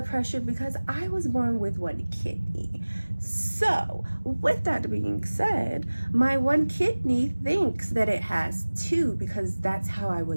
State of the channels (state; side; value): inverted; both; correlation -1.00